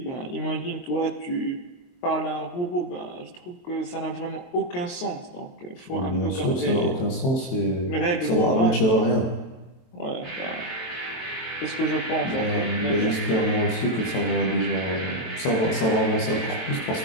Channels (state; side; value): late; right; 23 ms